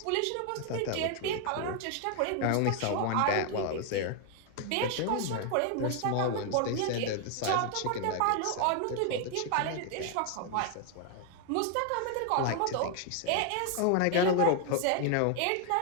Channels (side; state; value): both; different; correlation 0.00